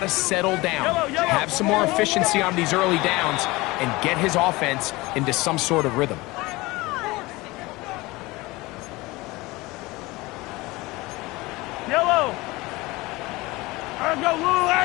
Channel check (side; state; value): right; quieter; 21.6 dB